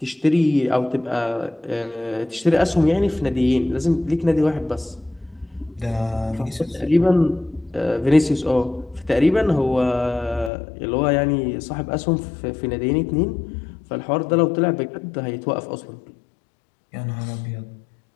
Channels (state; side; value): drops out; right; at 10.5 s